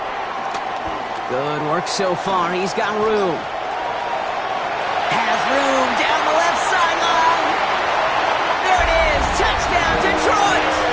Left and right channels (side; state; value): both; identical; correlation 1.00